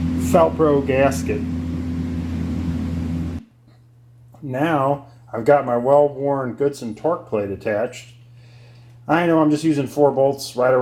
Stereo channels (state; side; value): identical; both; correlation 1.00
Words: Felpro gasket. Now I've got my well-worn Goodson torque plate attached. I know I'm just using 4 bolts right